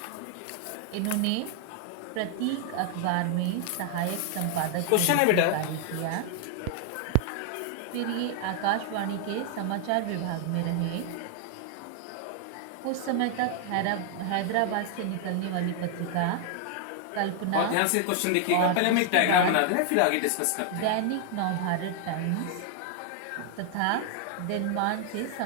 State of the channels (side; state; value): both; different; correlation 0.00